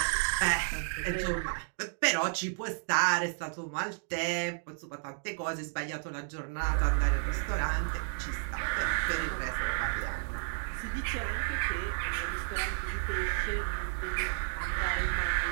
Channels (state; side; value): silent; left; digital silence